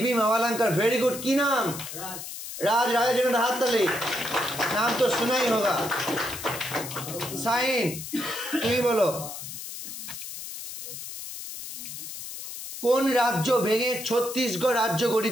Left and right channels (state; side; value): noise; left; hiss, 9 dB below the sound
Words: মাওলাঙ্কার। Very good. কি নাম? রাজ। রাজের জন্য হাততালি। নাম তো শোনাই হোগা। সাইন, তুমি বলো। কোন রাজ্য ভেঙে ছত্তিশগড় রাজ্য